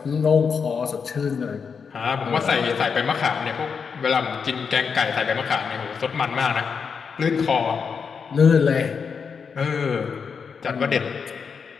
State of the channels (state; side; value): quieter; right; 6.0 dB